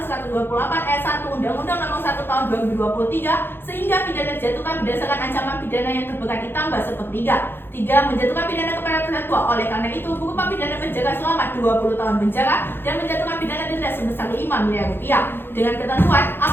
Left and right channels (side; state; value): right; late; 0.10 ms